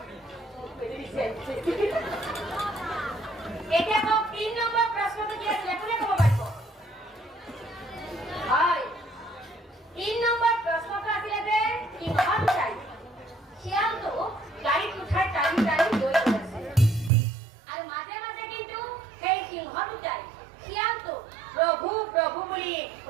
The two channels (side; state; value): left; drops out; at 17.1 s